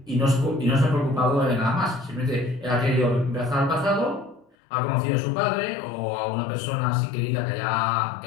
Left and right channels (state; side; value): drops out; right; at 4.5 s